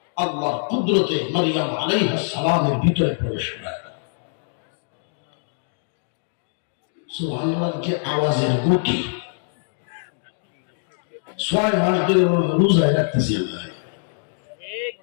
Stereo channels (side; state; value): right; silent; digital silence